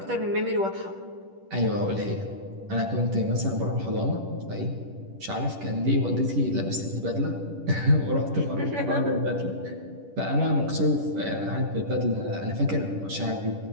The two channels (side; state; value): left; late; 10 ms